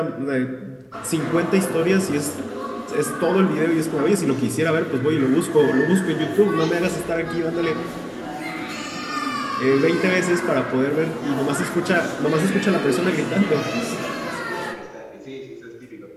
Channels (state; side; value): identical; both; correlation 1.00